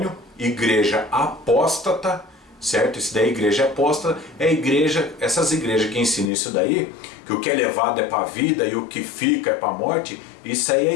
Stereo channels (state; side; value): drops out; right; at 6.3 s